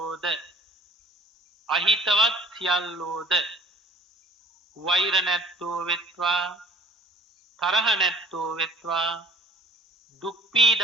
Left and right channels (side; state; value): both; normal; correlation 0.50